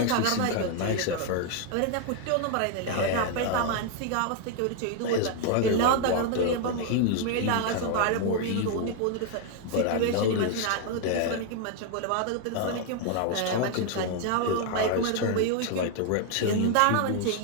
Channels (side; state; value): both; different; correlation 0.00